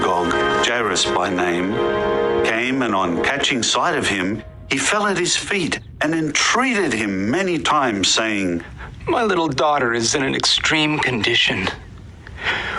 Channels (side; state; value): both; identical; correlation 1.00